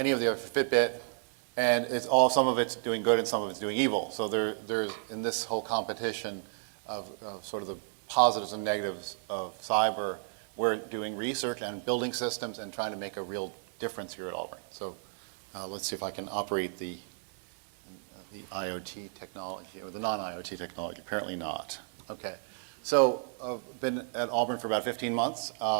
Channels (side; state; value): left; silent; digital silence